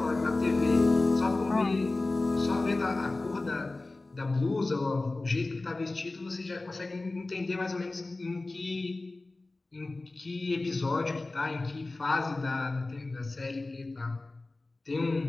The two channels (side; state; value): right; quieter; 3.1 dB